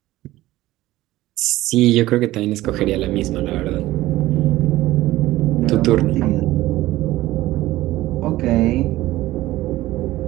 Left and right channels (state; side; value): quieter; left; 16.6 dB